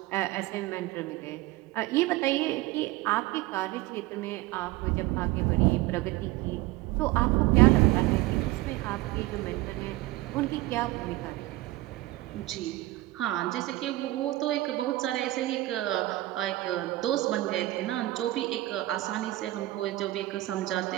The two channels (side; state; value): left; quieter; 18.1 dB